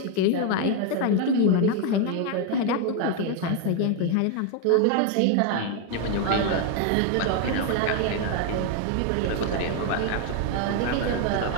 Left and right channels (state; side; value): different; both; correlation 0.01